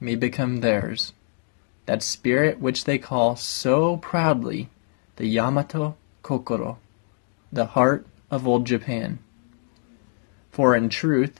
become theirs. That spirit which they call so proudly the Yamato Kokoro, the heart of old Japan. For in truth,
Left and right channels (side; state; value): right; silent; digital silence